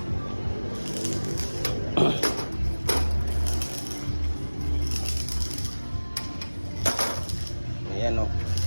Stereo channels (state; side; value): inverted; both; correlation -1.00